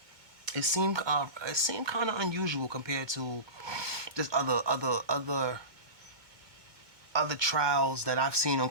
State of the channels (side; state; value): left; late; 2.2 ms